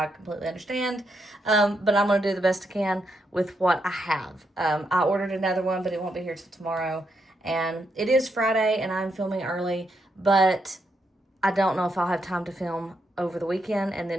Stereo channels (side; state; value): both; normal; correlation 0.80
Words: completely understand. But I'm going to do the best I can with what I have. I ordered another one, but it won't be here till tomorrow. And it is Friday, and I'm filming early, but I don't know if I'll have time to film over the weekend. And